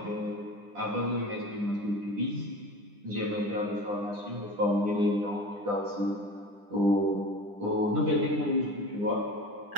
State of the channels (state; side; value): late; left; 9.9 ms